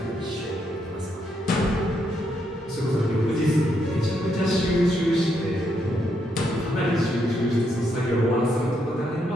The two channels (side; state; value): both; normal; correlation 0.77